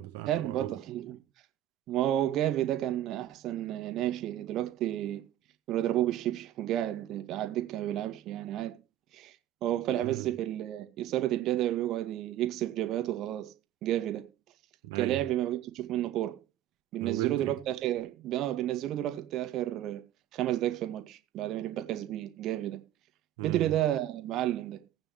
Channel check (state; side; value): quieter; left; 12.6 dB